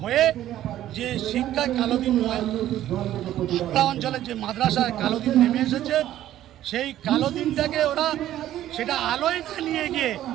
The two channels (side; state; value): left; quieter; 12.8 dB